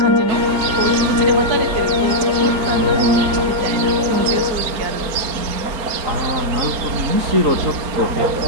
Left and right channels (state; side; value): late; left; 4.3 ms